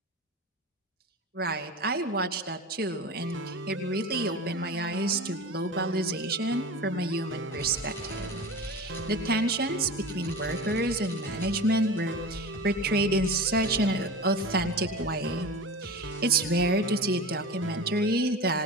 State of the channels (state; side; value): normal; both; correlation 0.31